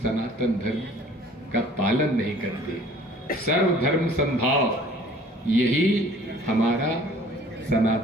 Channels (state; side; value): normal; both; correlation 0.51